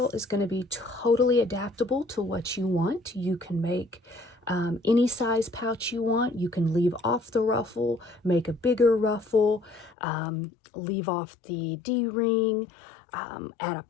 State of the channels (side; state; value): right; drops out; at 10.0 s